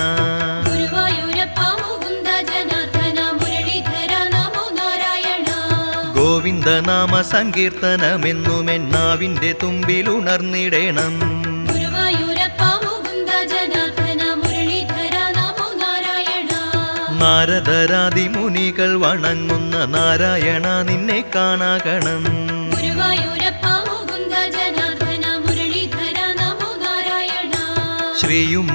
ഗുരുവായൂരപ്പ മുകുന്ദ ജനാർദ്ദന മുരളീധര നമോ നാരായണ. ഗോവിന്ദനാമ സങ്കീർത്തനമെന്നുമെന്നാവിന്റെ തുമ്പിലുണർന്നിടേണം. ഗുരുവായൂരപ്പ മുകുന്ദ ജനാർദ്ദന മുരളീധര നമോ നാരായണ. നാരദരാദി മുനികൾ വണങ്ങുന്ന നാരായണ നിന്നെ കാണാകണം. ഗുരുവായൂരപ്പ മുകുന്ദ ജനാർദ്ദന മുരളീധര നമോ നാരായണ.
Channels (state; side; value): inverted; both; correlation -1.00